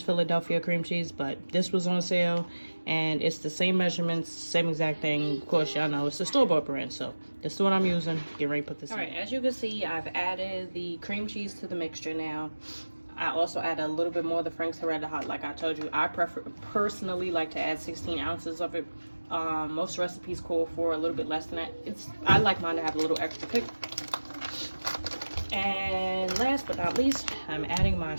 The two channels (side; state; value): both; inverted; correlation -1.00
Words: Philadelphia cream cheese, but this was on sale and it's the same measurements, same exact thing. Of course, y'all know it's the store-bought brand, so this is what I'm using. Get ready to put this in. All right, as you can see, I've added the cream cheese to the mixture now. I also add a little bit more of the Frank's Red Hot. Like I told you, I personally like to add 16 ounces of it. Most recipes call for a little bit less than that. I like mine to have a little extra kick. And last but not least, I'm adding my